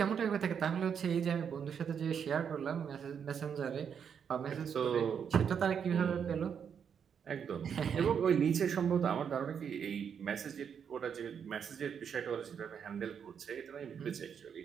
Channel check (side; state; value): left; quieter; 7.5 dB